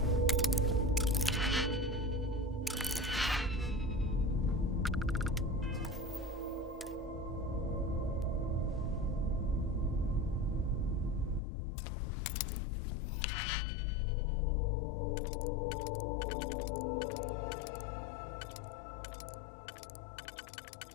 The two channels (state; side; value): drops out; right; at 11.4 s